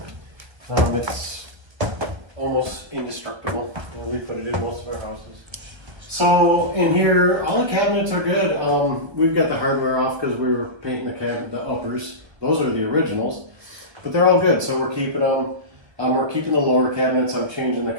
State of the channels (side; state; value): left; late; 1.0 ms